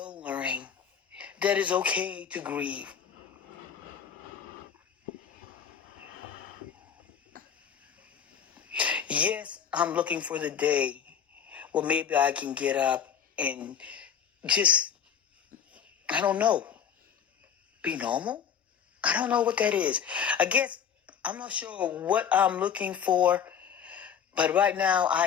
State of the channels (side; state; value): right; quieter; 8.0 dB